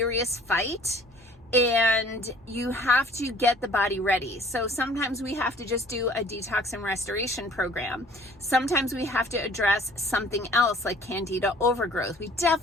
fight, and you have to get the body ready. So sometimes we have to just do a detox and restoration program. Sometimes we have to address something else like candida overgrowth. We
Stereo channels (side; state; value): both; normal; correlation 0.53